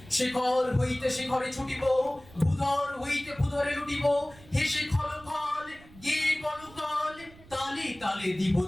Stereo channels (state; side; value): noise; right; rumble, 22 dB below the sound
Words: শিখর হইতে শিখরে ছুটিব, ভূধর হইতে ভূধরে লুটিব, হেসে খলখল গে কলকল, তালে তালে দিব